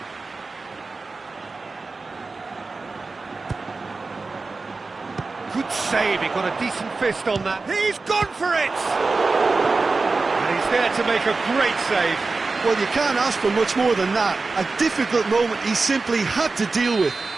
Good save, he got a decent fist on that. He's gone for it! And he's there to make a great save. Well, you can't ask for much more than that. A difficult moment he simply had to deal with.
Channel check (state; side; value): quieter; left; 3.9 dB